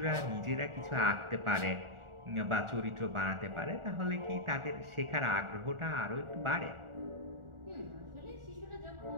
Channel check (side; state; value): left; late; 1.4 ms